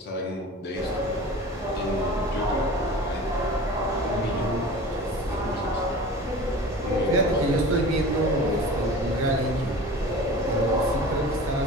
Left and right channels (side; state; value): both; normal; correlation 0.38